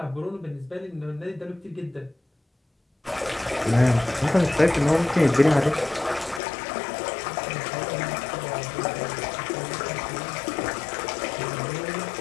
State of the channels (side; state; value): right; drops out; at 6.4 s